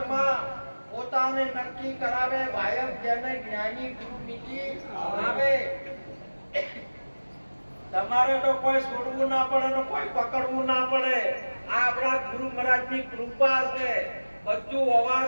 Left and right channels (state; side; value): inverted; both; correlation -1.00